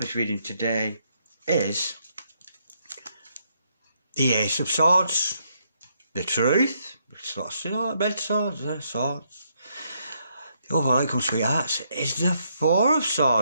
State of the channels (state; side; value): inverted; both; correlation -0.75